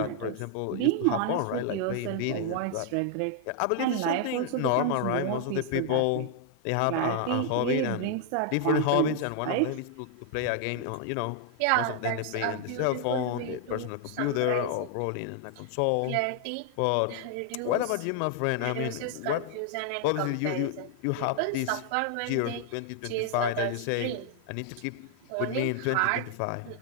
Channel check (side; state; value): both; different; correlation 0.00